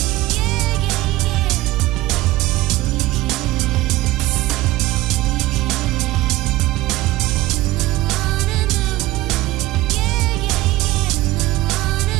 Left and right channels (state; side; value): quieter; left; 17.7 dB